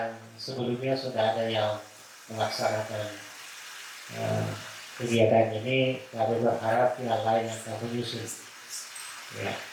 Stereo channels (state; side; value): identical; both; correlation 1.00